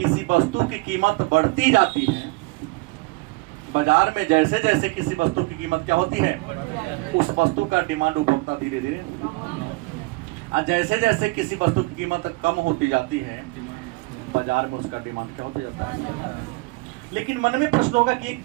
वस्तु की कीमत बढ़ती जाती है, बाजार में जैसे जैसे किसी वस्तु की कीमत क्या होती है, उस वस्तु का डिमांड उपभोक्ता धीरे धीरे, और जैसे जैसे किसी वस्तु की कीमत कम होती जाती है बाजार में उसका डिमांड क्या होता जाता है। लेकिन मन में प्रश्न होगा कि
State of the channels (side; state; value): left; quieter; 25.0 dB